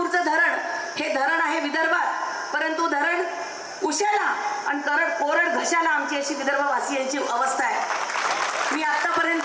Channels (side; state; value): both; identical; correlation 1.00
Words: धरण हे धरण आहे विदर्भात, परंतु धरण उशाला आणि कोरड घशाला आमची अशी विदर्भवासियांची अवस्था आहे. मी